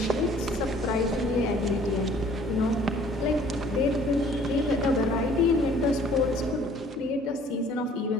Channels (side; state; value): both; normal; correlation 0.55